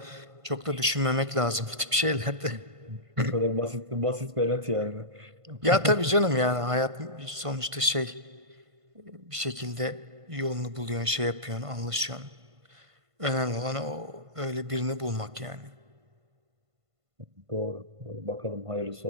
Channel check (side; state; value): left; late; 1.5 ms